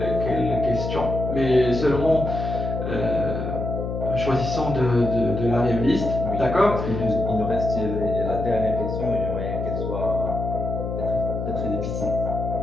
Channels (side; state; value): left; noise; hum, 4 dB below the sound